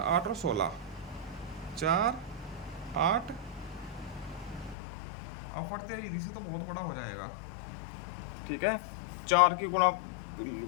8 और 16, 4, 8 अपवर्ते विधि से तो बहुत बड़ा हो जाएगा। ठीक है, 4 की गुणा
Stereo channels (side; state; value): right; drops out; at 4.8 s